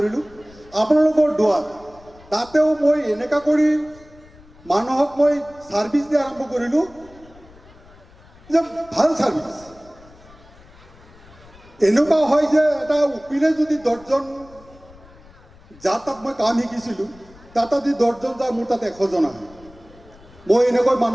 আপোনালোকৰ দোৱাত। তাতেও মই এনেকুৱা কৰি মানুহক মই ছাৰ্ভিচ দিয়া আৰম্ভ কৰিলোঁ যে ভাল ছাৰ্ভিচ। এনেকুৱা হয় যে এটা উকিলে যদি 10জন যাৰ তাত মই কাম শিকিছিলোঁ, তাত যদি 10জন যায়, মোৰ তাত 100জন আহে। মই এনেকৈ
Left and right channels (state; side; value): noise; left; rumble, 24 dB below the sound